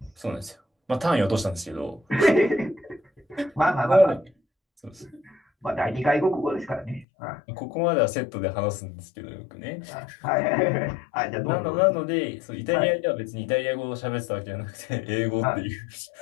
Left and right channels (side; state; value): right; drops out; at 7.1 s